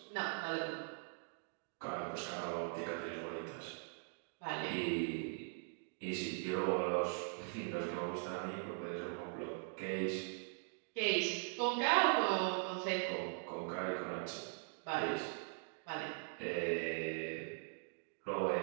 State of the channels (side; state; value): left; silent; 50 dB below the other